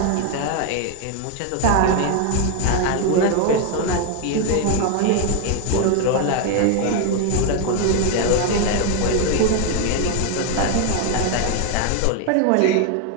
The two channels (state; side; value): different; both; correlation 0.01